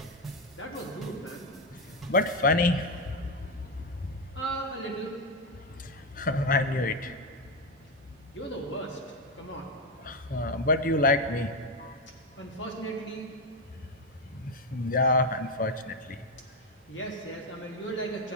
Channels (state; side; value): normal; both; correlation 0.09